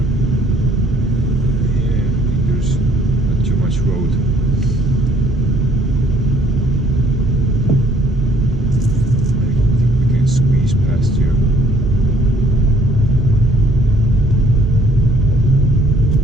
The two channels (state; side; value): normal; both; correlation 0.61